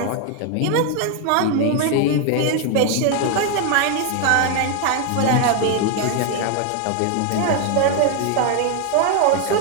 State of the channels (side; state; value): both; different; correlation 0.01